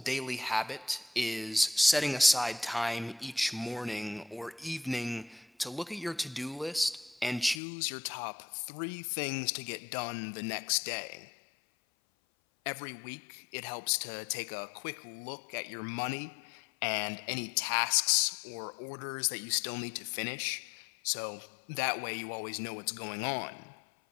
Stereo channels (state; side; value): drops out; right; at 7.6 s